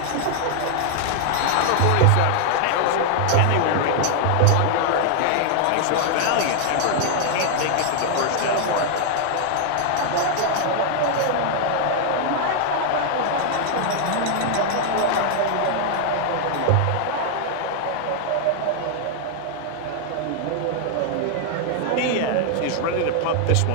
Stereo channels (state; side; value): different; both; correlation 0.00